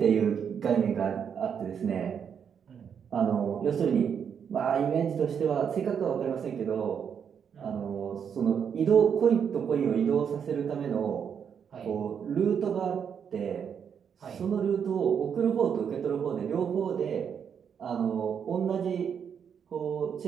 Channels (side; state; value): left; quieter; 7.5 dB